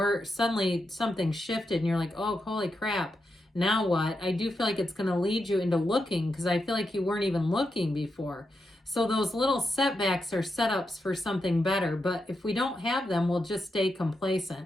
suddenly something shifted and you're like, oh, holy crap, now what? I do feel like it's going to lead you into looking, because I feel like you weren't even looking before. So those little setbacks are setups for something better. But if we don't have them, we'll just stay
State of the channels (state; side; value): normal; both; correlation 0.86